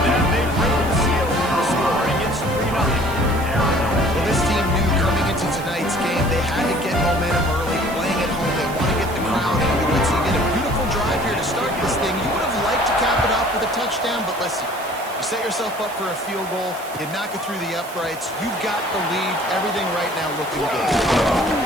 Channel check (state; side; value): noise; right; hiss, 16 dB below the sound